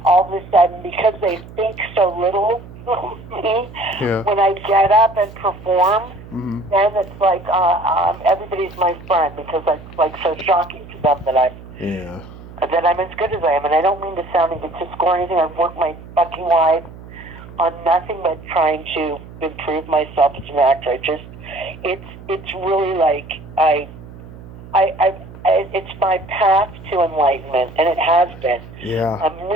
all of a sudden, because they think so little of me, when I get up and perform, then it's like everybody's my friend, because it's like so shocking to them that I'm as good as I am. And I don't mean to sound egotistical or anything. I've worked my fucking life on nothing but trying to improve myself as an actor. It's really like it's my path to enlightenment, and it has been. Yeah.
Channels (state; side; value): noise; right; hum, 17 dB below the sound